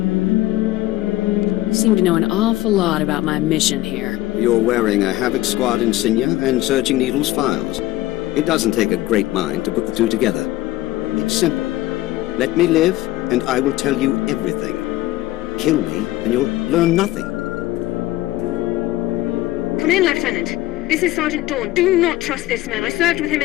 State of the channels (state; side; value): quieter; right; 16.6 dB